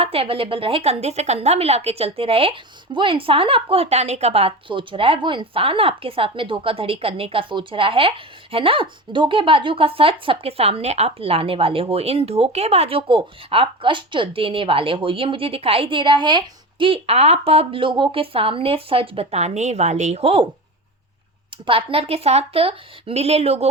अवेलेबल रहे, कंधे से कंधा मिला के चलते रहे, वो इंसान आपको हटाने का बात सोच रहा है, वो इंसान आपके साथ में धोखाधड़ी करने का सोच रहा है ना। धोखेबाजों का सच सबके सामने आप लाने वाले हो, इन धोखेबाजों को आप कष्ट देने वाले हो। ये मुझे दिखाई दे रहा है कि आप अब लोगों के सामने सच बताने वाले हो, पार्टनर के साथ मिले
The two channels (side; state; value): both; normal; correlation 0.27